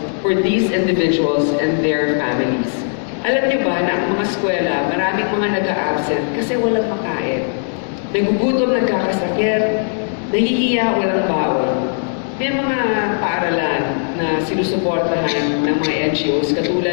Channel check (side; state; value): right; silent; 67 dB below the other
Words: for these individuals and their families. Alam niyo ba na ang mga eskwela, maraming mga nag-a-absent kasi walang makain. Nagugutom, nagkakasakit, nahihiya, walang baon. May mga paaralan na sinusuportahan ng mga NGOs